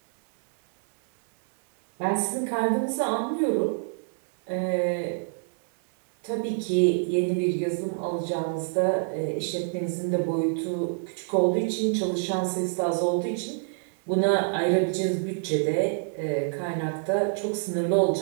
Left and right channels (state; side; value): silent; left; 61 dB below the other